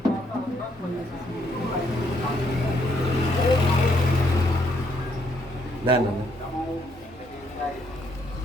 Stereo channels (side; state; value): both; normal; correlation 0.72